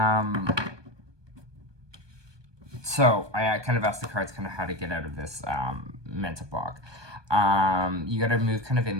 So I kind of asked the cards kind of how to get out of this mental block. You got to move kind of in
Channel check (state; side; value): late; left; 1.2 ms